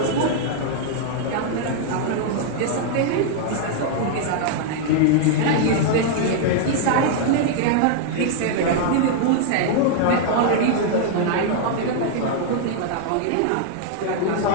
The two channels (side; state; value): both; different; correlation -0.01